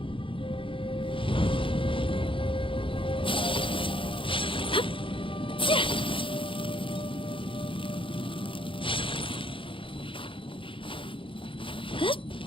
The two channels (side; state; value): right; late; 0.25 ms